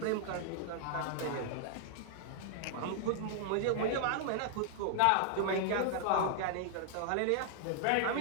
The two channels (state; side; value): different; both; correlation -0.01